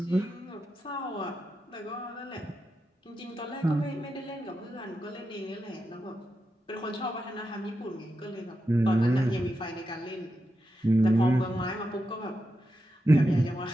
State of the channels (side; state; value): both; normal; correlation 0.88